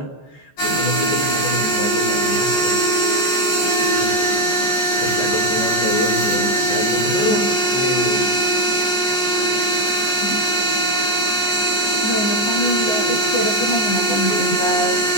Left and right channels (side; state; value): right; late; 14 ms